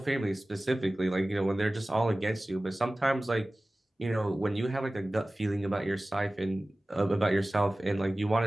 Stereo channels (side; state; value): both; normal; correlation 0.97